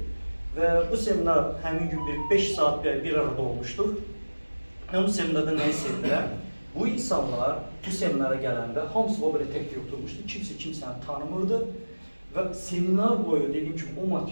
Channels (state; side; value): inverted; both; correlation -1.00